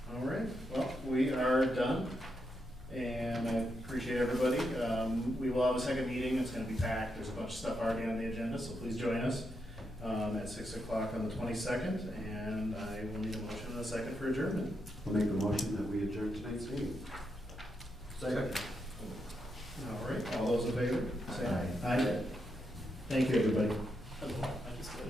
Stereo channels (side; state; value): both; normal; correlation 0.83